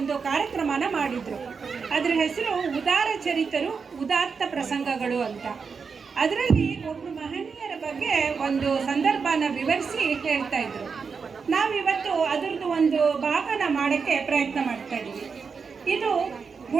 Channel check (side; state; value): left; quieter; 5.5 dB